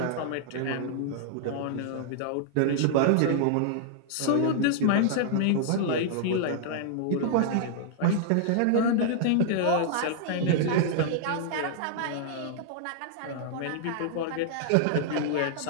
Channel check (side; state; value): both; different; correlation -0.01